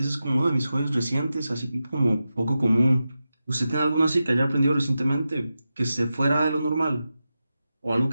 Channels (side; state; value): both; inverted; correlation -0.91